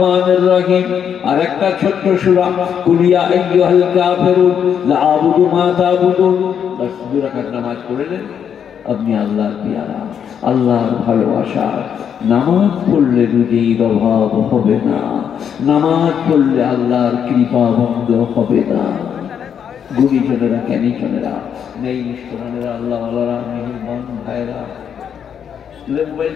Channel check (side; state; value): right; quieter; 8.1 dB